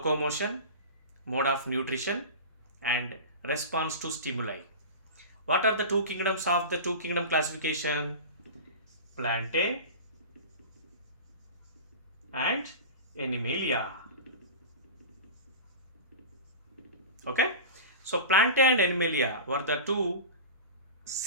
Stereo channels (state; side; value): inverted; both; correlation -0.31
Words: mode of nutrition and response to stimuli. What are the two kingdoms of the two kingdom classification? Plantae and Animalia. Okay, so Plantae and Animalia were the two